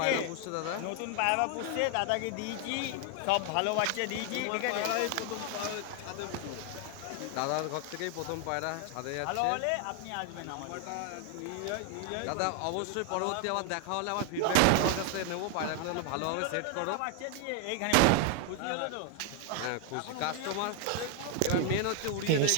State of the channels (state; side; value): different; both; correlation 0.00